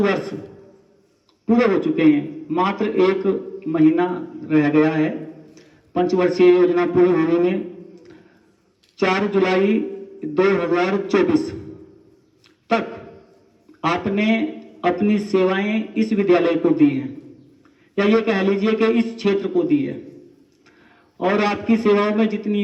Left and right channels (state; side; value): identical; both; correlation 1.00